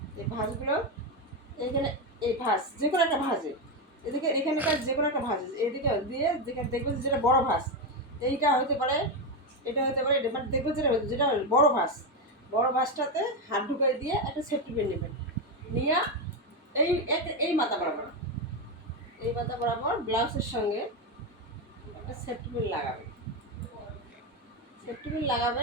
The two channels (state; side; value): normal; both; correlation 0.10